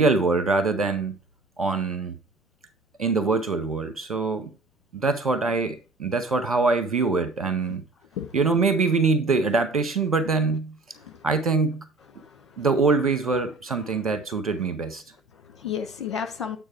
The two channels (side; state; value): left; quieter; 3.3 dB